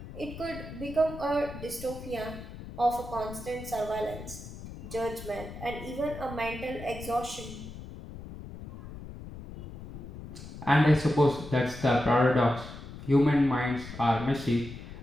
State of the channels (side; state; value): left; noise; rumble, 12 dB below the sound